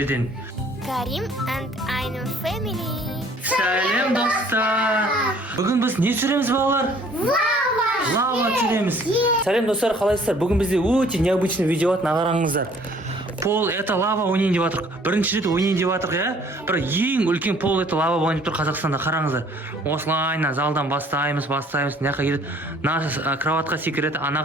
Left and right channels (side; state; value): both; normal; correlation 0.57